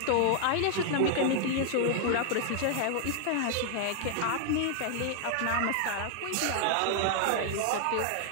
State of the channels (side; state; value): both; different; correlation 0.00